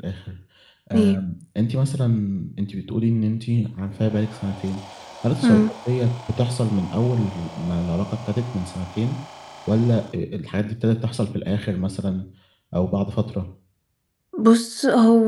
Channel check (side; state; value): both; identical; correlation 1.00